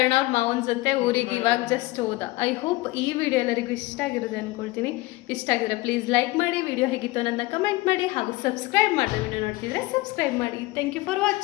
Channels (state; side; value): quieter; right; 20.7 dB